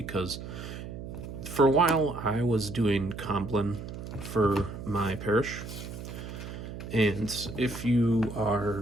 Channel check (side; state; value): right; noise; hum, 9 dB below the sound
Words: for a while I was doing Compline for my parish, and if you are